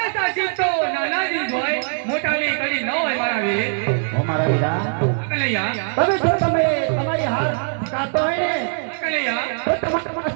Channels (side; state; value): left; silent; 65 dB below the other